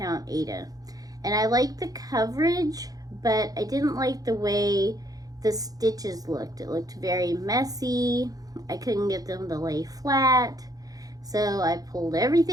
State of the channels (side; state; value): left; late; 0.18 ms